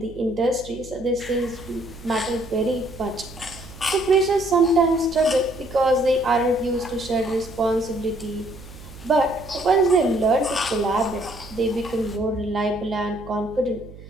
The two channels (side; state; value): right; noise; hum, 17 dB below the sound